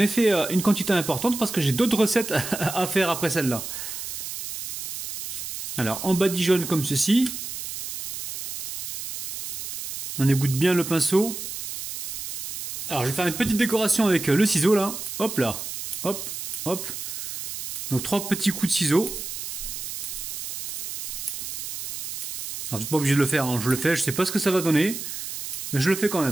fait une quantité importante parce que j'ai d'autres recettes à faire après celle-là. Alors, en badigeonne comme ceci. On égoutte bien le pinceau. Alors, je vais faire une petite décoration avec le ciseau là. Hop là. Hop, hop. Donc 3 petits coups de ciseau. Alors, tu n'es pas obligé de le faire, hein. Je le fais, je sais pas ce que ça va donner. Mais je le fais quand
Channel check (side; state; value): right; noise; hiss, 7 dB below the sound